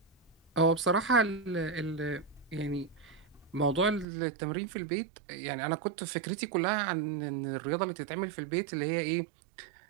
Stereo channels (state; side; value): drops out; left; at 4.0 s